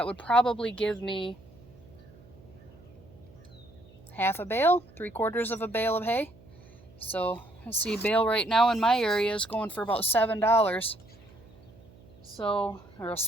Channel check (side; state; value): right; noise; hum, 24 dB below the sound